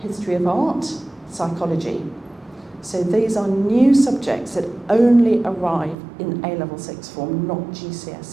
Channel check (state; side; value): drops out; left; at 6.0 s